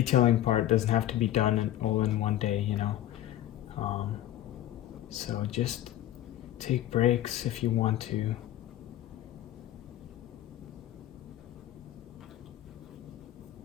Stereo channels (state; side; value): quieter; right; 13.0 dB